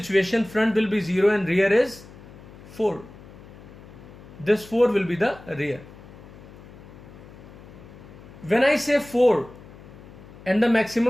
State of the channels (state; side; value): noise; left; hum, 19 dB below the sound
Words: front will be 0 and rear is 4. This 4 will be the rear. When I say 4 and the